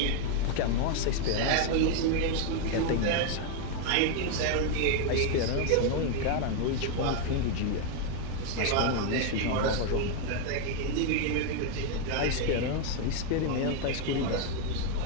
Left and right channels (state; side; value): different; both; correlation 0.01